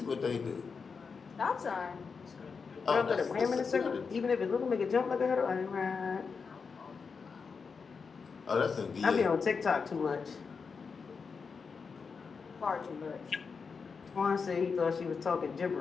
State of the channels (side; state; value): right; quieter; 5.3 dB